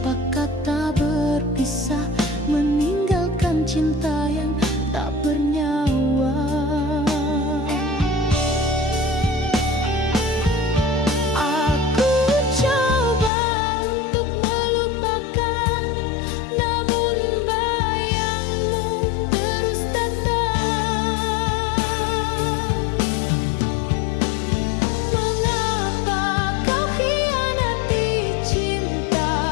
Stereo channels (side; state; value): right; drops out; at 13.3 s